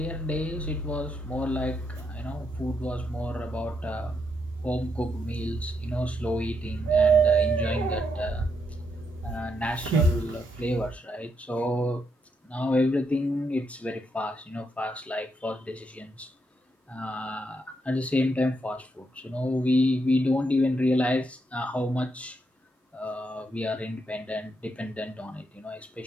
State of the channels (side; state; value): both; normal; correlation 0.79